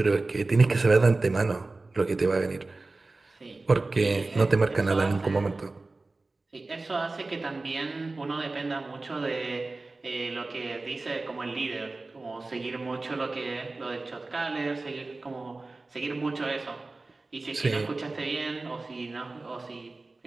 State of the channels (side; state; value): left; quieter; 3.3 dB